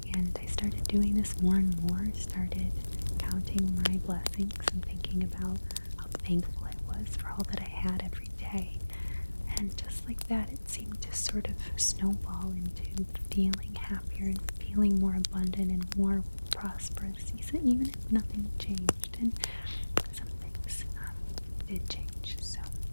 And I started doing this more and more, started counting my blessings and thinking about thankful I was for all that I had every day. And just like that, it seemed to sort of snowball into feeling happier and feeling more abundant and more prosperous, even if nothing changed. And some things did change. So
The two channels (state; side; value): inverted; both; correlation -1.00